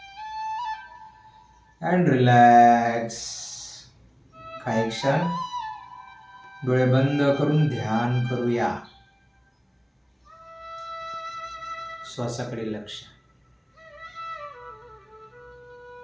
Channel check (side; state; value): both; identical; correlation 1.00